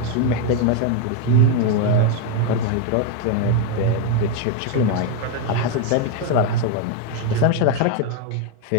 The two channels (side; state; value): both; different; correlation 0.01